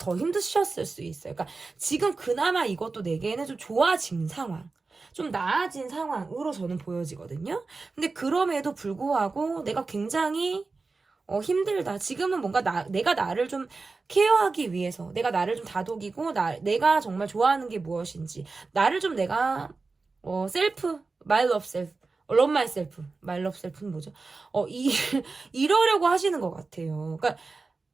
힘드셨을 수 있어요. 그러니까 지금 그나마 이것도 내게는 좀 좋아진 상황. 좀 나아진 상황으로 저는 보여지거든요. 근데 그럼에도 불구하고 내가 굉장히 힘들다. 지금은 뭔가 내가 나를 좀 케어하기 위해서 내가 나를 좀 다독이고 내가 정말 좋아하는 게 무엇인지 나를 좀 내가 my love self love myself my love self는 뭐죠? 이러려고 하시는 것 같아요. 그러니까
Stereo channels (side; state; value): left; quieter; 4.0 dB